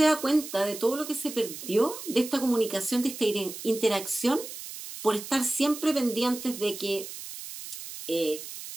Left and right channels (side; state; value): right; noise; hiss, 11 dB below the sound